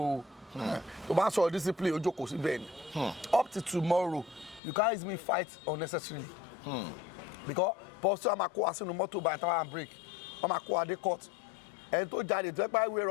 tó bá sọ discipline ojú kò sí bẹ́ẹ̀ ni up to tomorrow you can't use me fight unnecessarily because pọ́sí wa máa kó wa sínú mọ́tò by tower and break wọ́n máa kó wa dé court ẹni tó jáde tó ẹgbẹ́ ìwé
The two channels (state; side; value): drops out; right; at 4.6 s